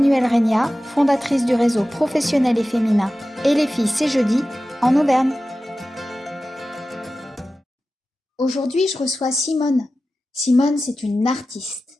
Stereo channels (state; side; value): normal; both; correlation 0.94